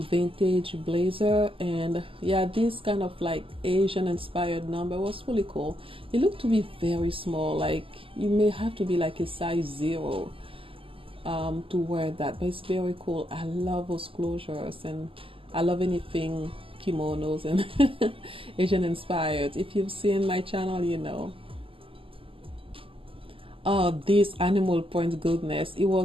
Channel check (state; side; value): late; left; 0.26 ms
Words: blazer. And yeah, this kind of like Asian inspired number was really cool. It looked to be very small, like you may have to be like a size 0 to wear that, but it's very cool. I love those closures, and I love anything kimonos and Asian inspired. If you've seen my channel, oh, this animal print goodness, it